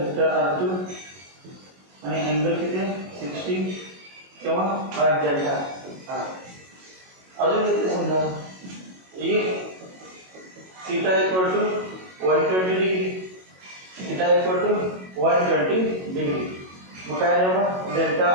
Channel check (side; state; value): left; late; 22 ms